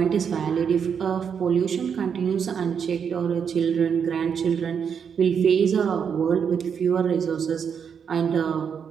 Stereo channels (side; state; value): left; quieter; 7.1 dB